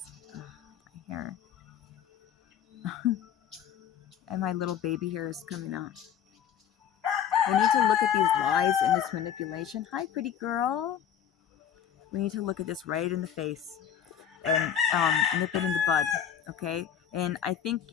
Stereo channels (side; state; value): right; quieter; 9.0 dB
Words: Ugh, my hair. And my little baby hair is coming out. We need to look at these lies and this manipulation. Hi, pretty girl. We need to look at this right in the face and nip it in the bud, okay? And I think,